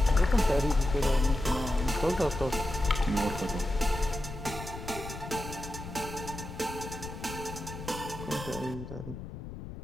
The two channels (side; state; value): left; noise; rumble, 10 dB below the sound